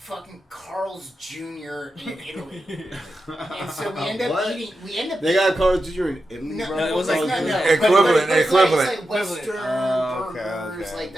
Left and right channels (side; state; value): both; normal; correlation 0.90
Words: Carl's Jr. in Italy. And so we end up eating. They got Carl's Jr. in Italy, bro? No, it was like equivalent. It's like Western burgers, like